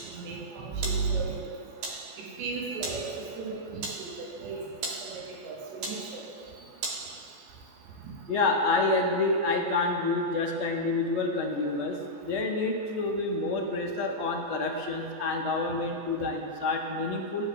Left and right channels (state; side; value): late; left; 14 ms